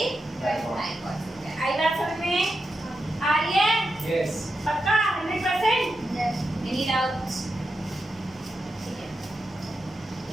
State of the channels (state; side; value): normal; both; correlation 0.88